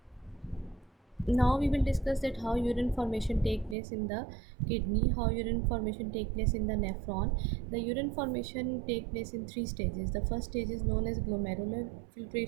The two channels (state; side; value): drops out; left; at 3.8 s